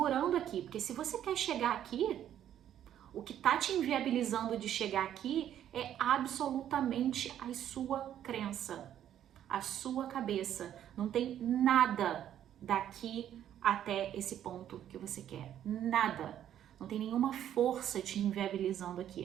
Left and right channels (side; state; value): left; quieter; 10.7 dB